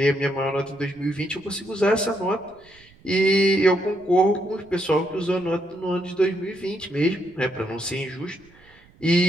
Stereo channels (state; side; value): noise; right; rumble, 28 dB below the sound